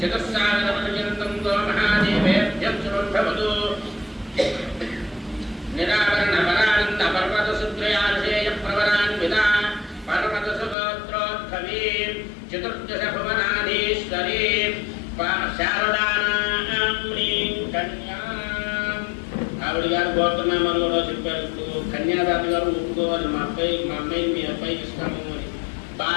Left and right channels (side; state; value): right; drops out; at 10.8 s